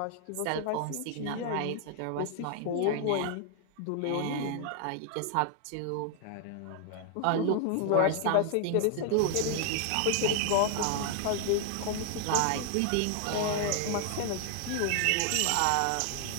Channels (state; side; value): different; both; correlation 0.00